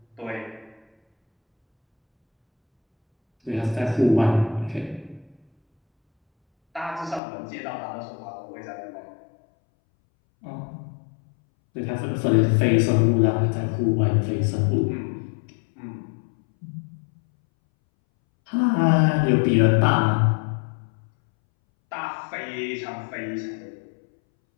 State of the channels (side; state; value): right; drops out; at 7.2 s